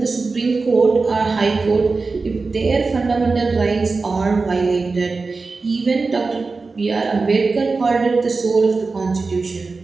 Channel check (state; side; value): quieter; left; 4.0 dB